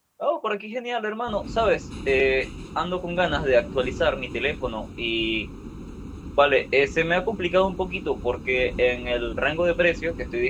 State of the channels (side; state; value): both; identical; correlation 1.00